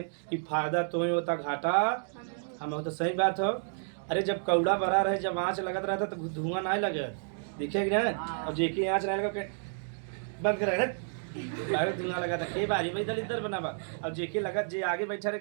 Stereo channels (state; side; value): silent; left; digital silence